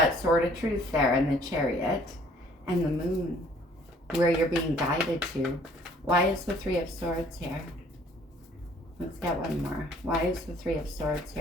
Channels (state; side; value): normal; both; correlation 0.58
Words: Sword of Truth there and the Chariot and the Moon, where you're being guided to. Why is the Three of Swords here? Let's get one more. Why is the Three of Swords